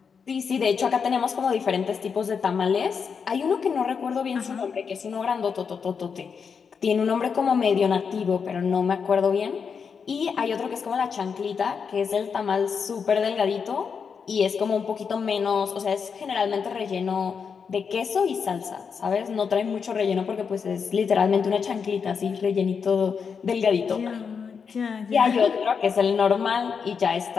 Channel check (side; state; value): right; quieter; 6.1 dB